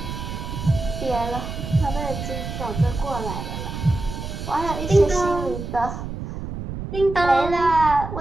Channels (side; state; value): right; noise; rumble, 7 dB below the sound